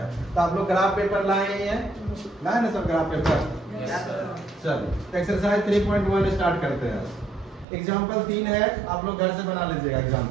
तो आप लोग ग्राफ पेपर लाए हैं, लाए ना सब ग्राफ पेपर? चलो एक्सरसाइज 3.1 स्टार्ट करते हैं। एग्जाम्पल 3 है, आप लोग घर से बना लीजिएगा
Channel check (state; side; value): drops out; left; at 7.7 s